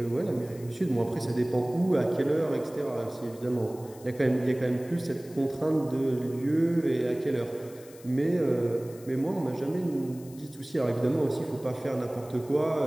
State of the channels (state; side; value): noise; left; hiss, 22 dB below the sound